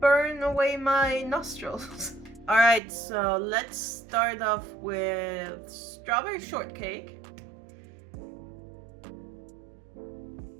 burn away my nostrils. Alright, so let's start off with strawberry shortcake.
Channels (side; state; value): left; drops out; at 2.8 s